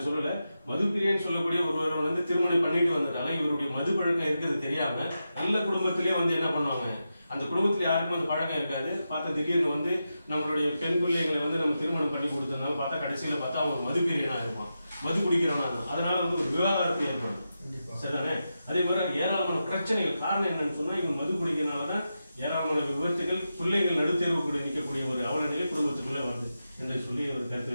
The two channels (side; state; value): both; inverted; correlation -0.89